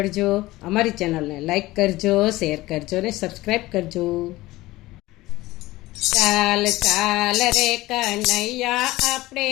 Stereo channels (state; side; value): quieter; right; 18.5 dB